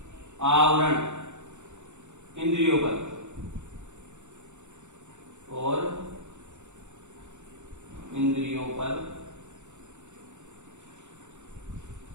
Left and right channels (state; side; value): late; left; 0.84 ms